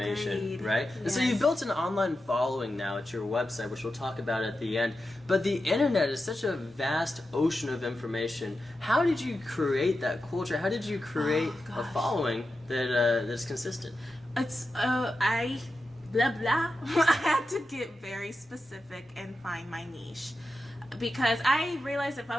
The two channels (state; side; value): normal; both; correlation 0.90